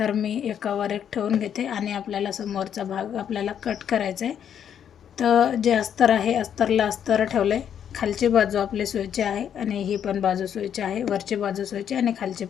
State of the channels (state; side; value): quieter; right; 8.9 dB